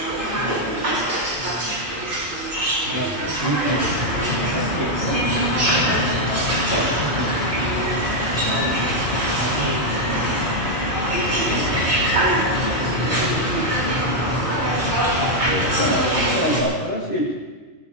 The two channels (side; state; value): both; normal; correlation 0.00